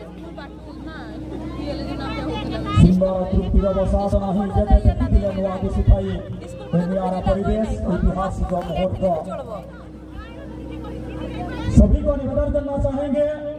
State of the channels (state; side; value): identical; both; correlation 1.00